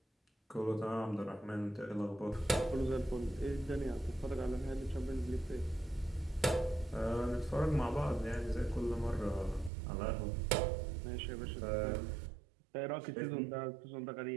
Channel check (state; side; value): drops out; left; at 9.7 s